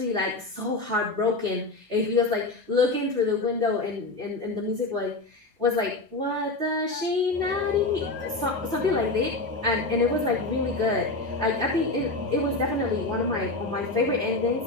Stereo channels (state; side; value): quieter; right; 3.1 dB